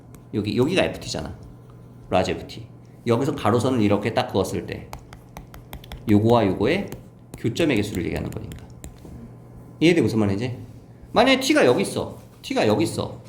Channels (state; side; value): identical; both; correlation 1.00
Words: 여기가 ft잖아. 라지 ft. 여기서 가로선을 이렇게 딱 그었을 때 요거와 요거의 교점의 개수를 얘기하는 거니까. 이해돼? 무슨 말인지? 만약에 t가 여기 있어. t가 여기 있어.